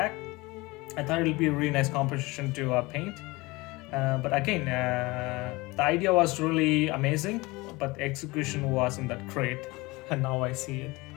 I thought it would be a really nice composition to paint. But again, the idea was really amazing, but the execution wasn't that great. And now I see it.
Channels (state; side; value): quieter; right; 22.9 dB